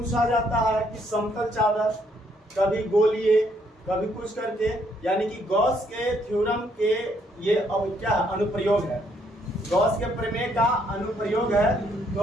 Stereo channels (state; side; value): normal; both; correlation 0.70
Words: जाता है कि समतल चादर, कभी गोलीय, कभी कुछ करके, यानी कि गॉस के थ्योरम के ये क्या अनुप्रयोग है, गॉस के प्रमेय का अनुप्रयोग है।